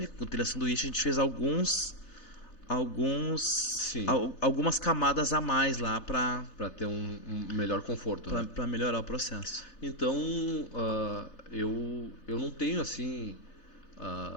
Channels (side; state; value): right; late; 4.0 ms